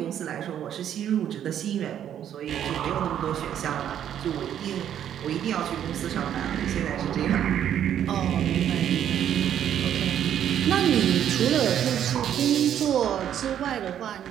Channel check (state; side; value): quieter; left; 10.1 dB